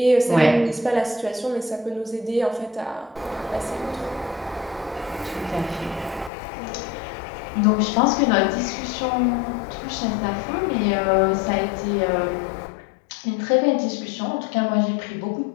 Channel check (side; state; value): right; drops out; at 6.3 s